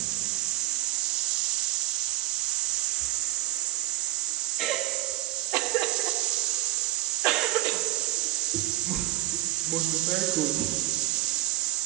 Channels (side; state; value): left; quieter; 17.5 dB